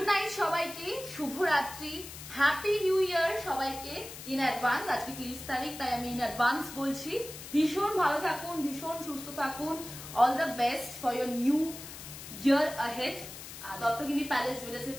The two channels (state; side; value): noise; left; hiss, 12 dB below the sound